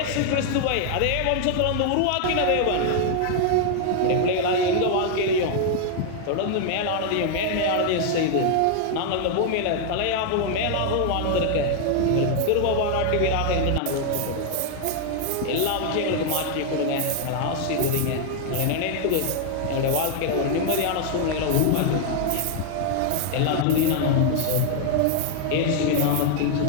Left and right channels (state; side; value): different; both; correlation 0.00